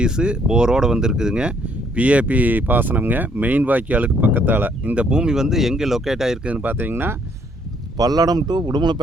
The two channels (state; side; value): normal; both; correlation 0.67